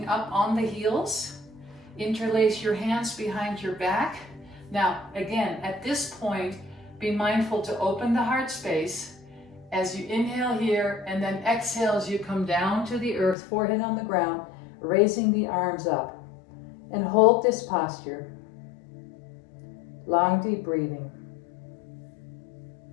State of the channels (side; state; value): right; drops out; at 13.4 s